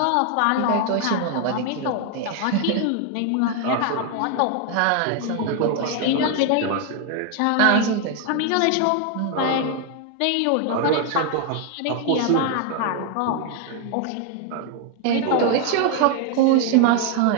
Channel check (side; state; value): both; different; correlation 0.01